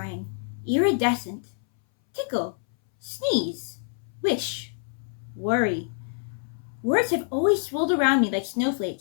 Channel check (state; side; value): silent; right; 60 dB below the other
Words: iridescent, tickle, sneeze, wish, worry. Words have always swirled around me like